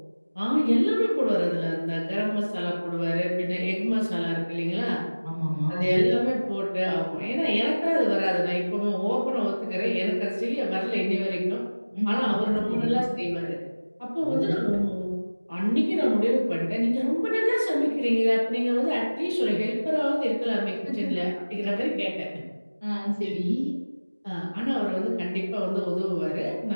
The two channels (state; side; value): inverted; both; correlation -1.00